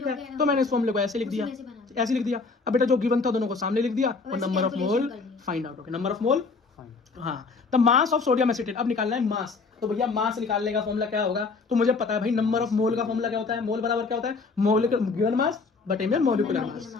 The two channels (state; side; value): quieter; right; 4.3 dB